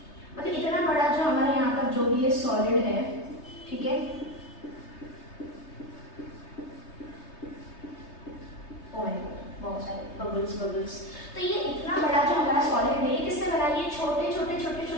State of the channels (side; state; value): right; late; 3.3 ms